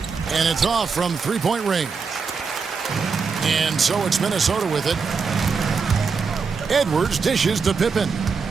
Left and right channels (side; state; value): left; quieter; 5.3 dB